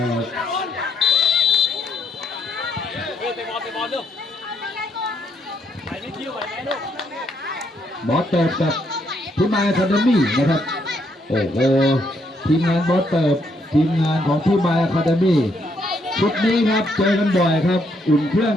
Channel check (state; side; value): normal; both; correlation 0.74